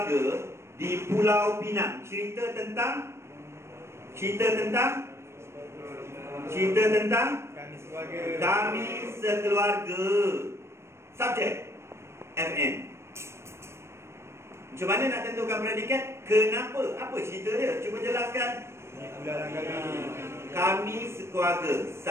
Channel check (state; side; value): late; left; 0.13 ms